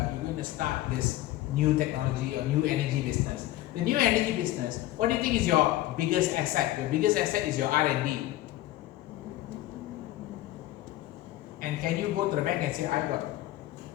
going to start this new technology or new energy business. The new energy business, what do you think is your biggest asset? Your biggest asset is your R&D. And can you go to the bank and say, I got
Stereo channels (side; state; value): right; quieter; 15.5 dB